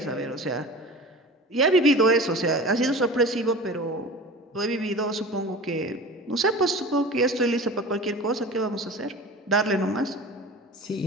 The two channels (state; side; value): normal; both; correlation 0.36